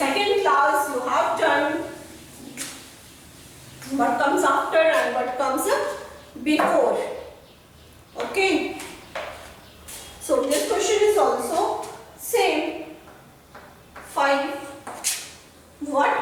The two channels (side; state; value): both; identical; correlation 1.00